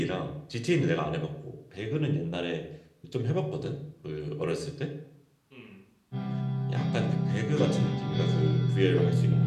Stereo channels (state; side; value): identical; both; correlation 1.00